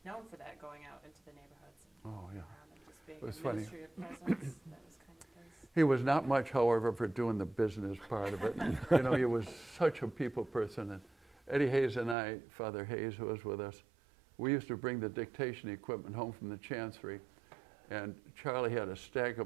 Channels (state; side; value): drops out; left; at 12.2 s